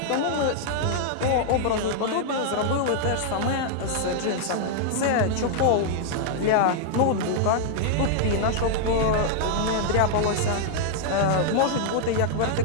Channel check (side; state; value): both; different; correlation -0.01